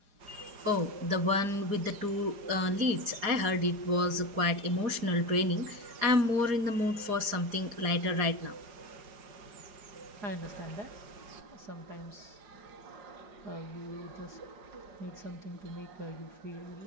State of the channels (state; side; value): late; left; 4.9 ms